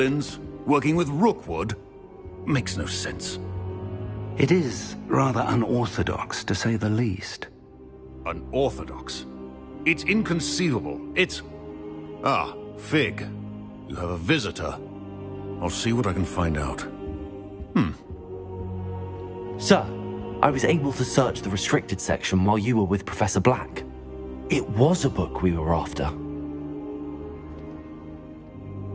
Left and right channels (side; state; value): both; identical; correlation 1.00